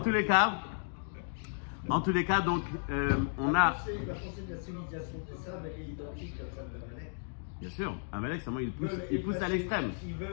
tous les cas, donc on a. La pensée de la civilisation de ça, mais elle est identique à celle d'Amalek. Bien sûr, Amalek, c'est moi, il pousse à l'extrême.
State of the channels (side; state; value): right; silent; digital silence